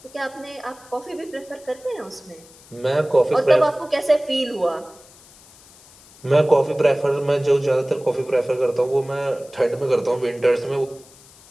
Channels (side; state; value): left; noise; hiss, 24 dB below the sound